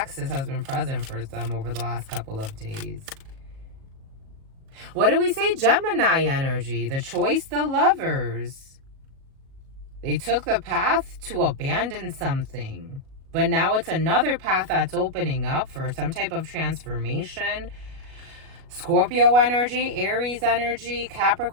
has been present for some over the last couple of days. What do we say? Gemini energy. The choice, the lovers. They took the path to abandon something. But now it's another path that's opening up for some type of transformation. Scorpio energy, Aries energy,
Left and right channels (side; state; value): left; late; 37 ms